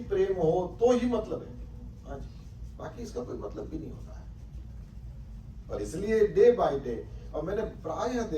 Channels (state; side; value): identical; both; correlation 1.00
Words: प्रेम हो तो ही मतलब है, हाँ जी, बाकी इसका कोई मतलब भी नहीं होता है। और इसलिए डे बाय डे, और मैंने प्रायः